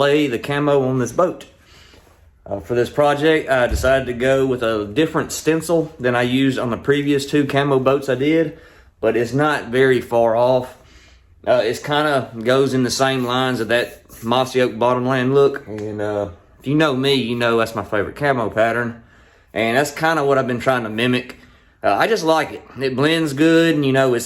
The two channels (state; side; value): identical; both; correlation 1.00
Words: the camo on this boat. For this project, I decided to go with a different stencil than I used on the previous 2 camo boats I did, but it's not very far off. It's kind of goes in the same lines of that mossy oak bottomland look, and if you know me, you know that's my favorite camo pattern, and that's kind of what I've been trying to mimic. I just like it. It blends good, and you know,